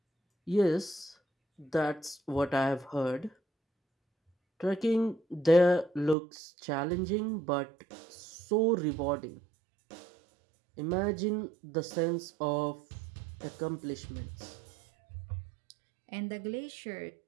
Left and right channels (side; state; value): left; drops out; at 6.2 s